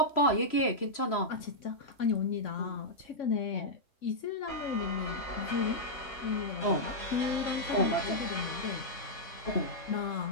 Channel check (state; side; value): late; right; 3.0 ms